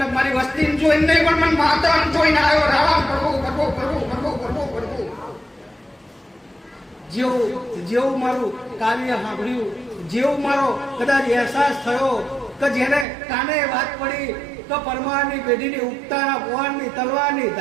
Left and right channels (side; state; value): left; drops out; at 13.1 s